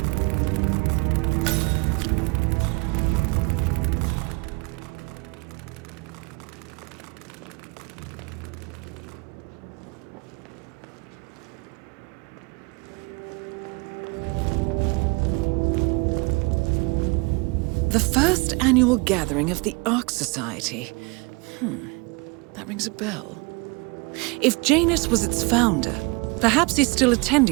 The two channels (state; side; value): quieter; left; 28.4 dB